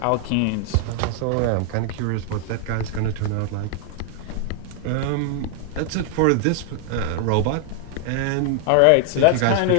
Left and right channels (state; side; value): different; both; correlation 0.00